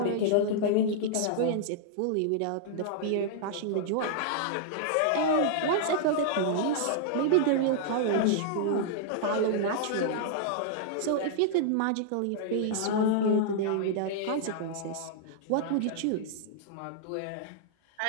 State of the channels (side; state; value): both; different; correlation -0.01